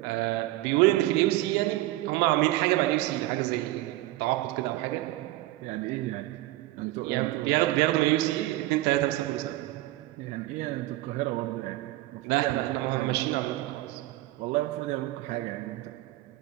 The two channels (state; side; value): quieter; left; 17.3 dB